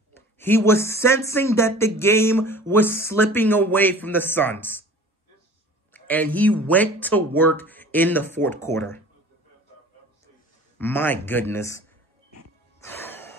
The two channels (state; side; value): normal; both; correlation 0.44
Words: He was sensing that the game was slipping away from the Suns. And he went to work in the fourth quarter. My goodness.